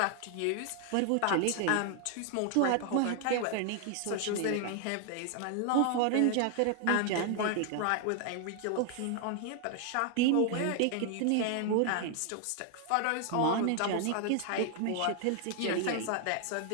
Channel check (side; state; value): both; different; correlation 0.00